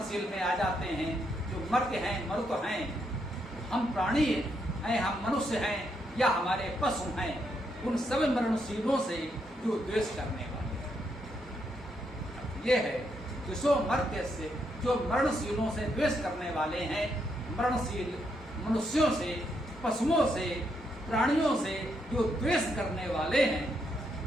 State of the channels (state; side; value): normal; both; correlation 0.78